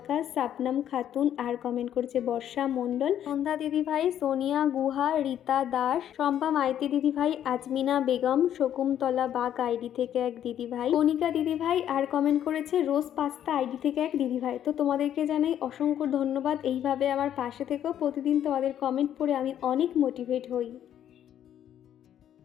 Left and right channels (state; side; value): quieter; right; 10.4 dB